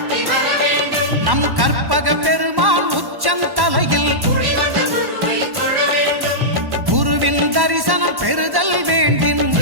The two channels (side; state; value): left; late; 1.1 ms